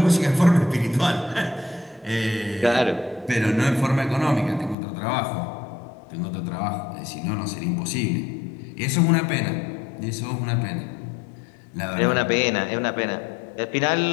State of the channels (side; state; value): right; drops out; at 4.8 s